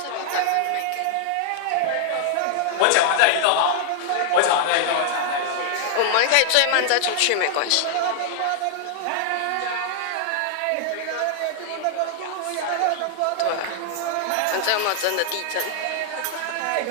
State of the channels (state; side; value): different; both; correlation 0.00